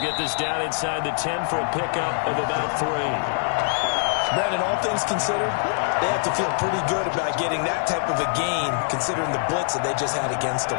this down inside the 10 for a pickup of about 3. Brandon, all things considered, they have to feel pretty good about getting that type of a gain, considering the blitz that they just had against them.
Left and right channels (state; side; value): silent; right; 63 dB below the other